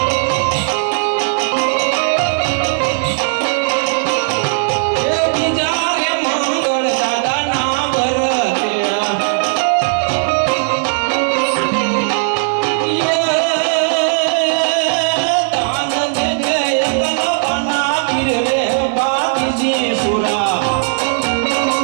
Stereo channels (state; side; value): silent; left; digital silence